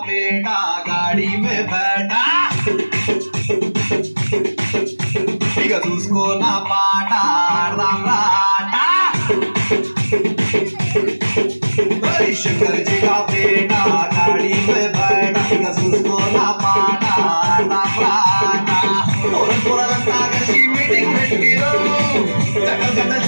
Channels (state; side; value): inverted; both; correlation -1.00